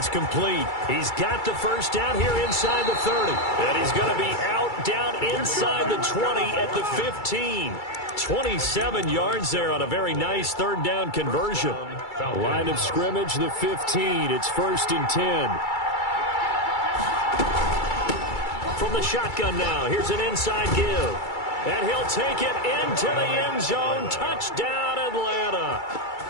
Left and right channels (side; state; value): right; late; 2.3 ms